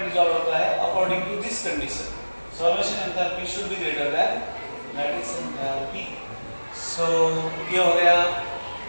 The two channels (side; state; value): both; inverted; correlation -1.00